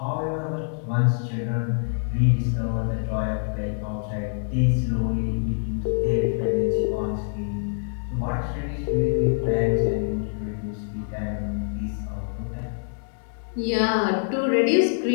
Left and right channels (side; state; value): right; silent; digital silence